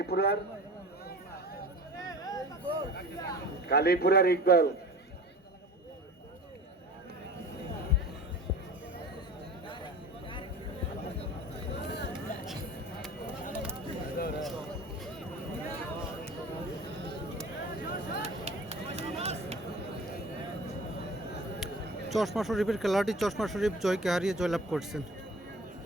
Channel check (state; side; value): normal; both; correlation 0.41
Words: কালীপুরার ইকবাল। চশমা শরীফের খেলাটি চশমা শরীফ জয়কে হারিয়ে জয়লাভ করছেন।